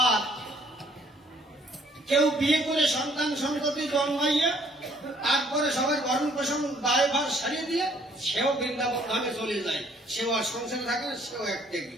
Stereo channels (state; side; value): normal; both; correlation 0.62